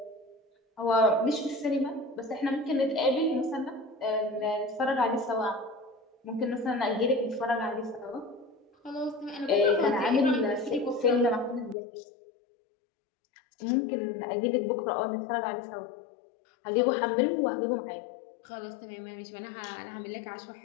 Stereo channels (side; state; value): right; drops out; at 11.8 s